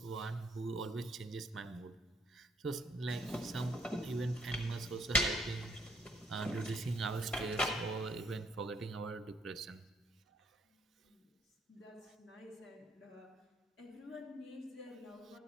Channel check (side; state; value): both; normal; correlation 0.68